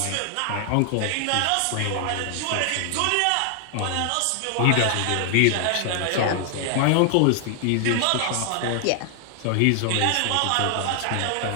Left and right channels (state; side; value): different; both; correlation 0.00